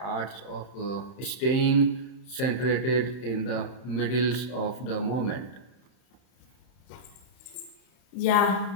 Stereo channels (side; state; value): right; late; 31 ms